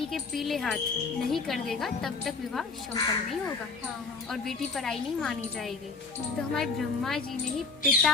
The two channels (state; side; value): quieter; right; 4.4 dB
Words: के पीले हाथ नहीं कर देगा तब तक विवाह संपन्न नहीं होगा और बेटी पराई नहीं मानी जाएगी। तो हमारे ब्रह्मा जी ने ही